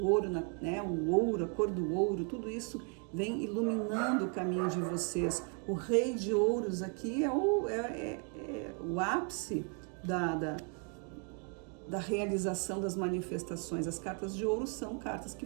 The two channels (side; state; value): left; quieter; 38.5 dB